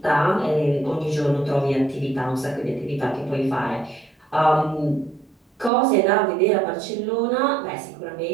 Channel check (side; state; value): left; drops out; at 5.7 s